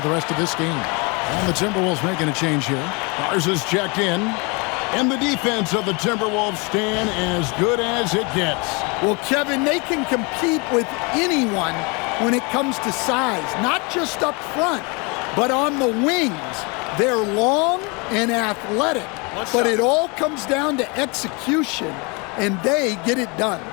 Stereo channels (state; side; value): quieter; right; 30.0 dB